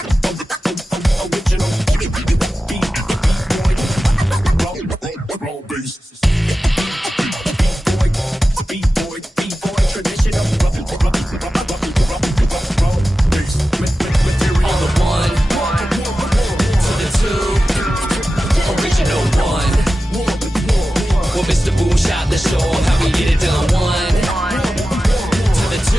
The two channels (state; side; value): normal; both; correlation 0.94